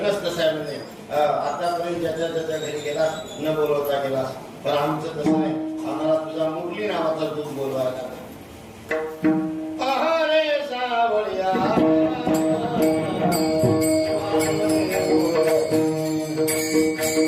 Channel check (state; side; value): identical; both; correlation 1.00